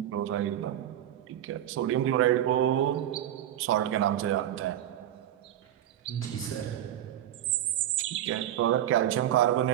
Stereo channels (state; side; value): quieter; left; 11.9 dB